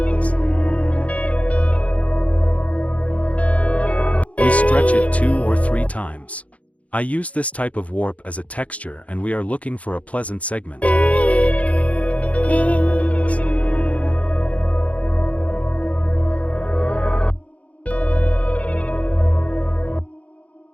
We stretch it 2 or 3 times. I use this type of warp as a texture and we are looking for a pleasant segment.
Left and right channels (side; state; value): right; late; 0.066 ms